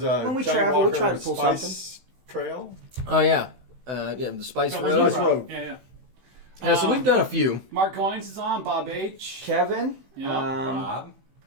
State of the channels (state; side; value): late; left; 16 ms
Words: a when we Johnny travel, we Walker try to pull Spice something. Trail. Oh, yeah. The Spice No, Road. Spice Road. Yeah. Yeah, so we've done a few. Mark Goins is on. Bob H. Kevin. Yeah. Bob.